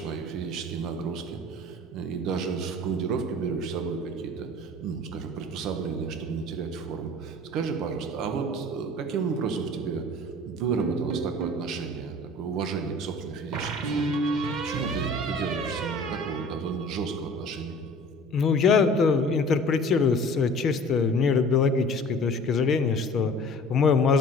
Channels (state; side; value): normal; both; correlation 0.45